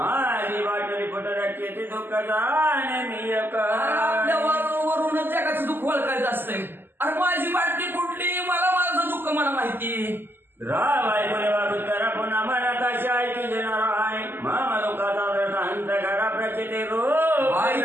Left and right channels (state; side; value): late; left; 0.097 ms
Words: वाटली फुटण्याची ती दुःख वरूनच जगाचं दुःख ओळखायचं असतंय. अरे माझी बाटली फुटली मला माझं दुःख मला माहिती राय करा पुन्हा मनात अशी ऐकी देणार आहे मामा दुःखाचा अंत करा प्रचिती